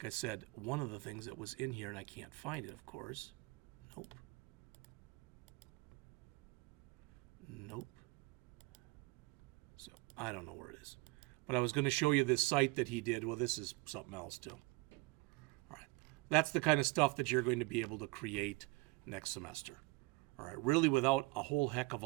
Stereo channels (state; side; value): quieter; left; 25.1 dB